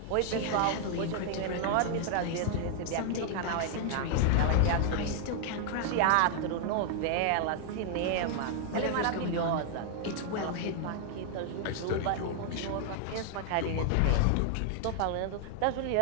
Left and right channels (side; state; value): both; different; correlation 0.00